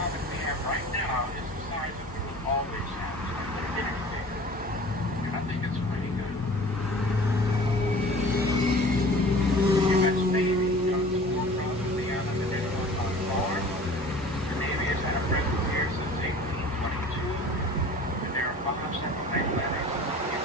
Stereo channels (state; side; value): normal; both; correlation 0.44